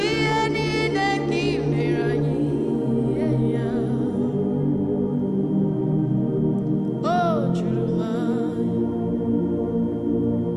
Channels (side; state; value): both; identical; correlation 1.00